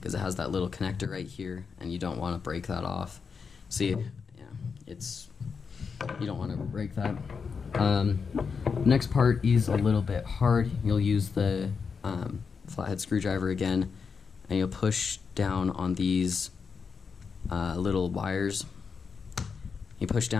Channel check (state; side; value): quieter; right; 5.6 dB